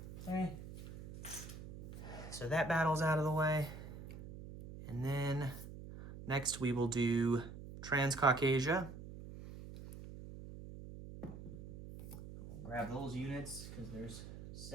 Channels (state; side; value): noise; right; hum, 12 dB below the sound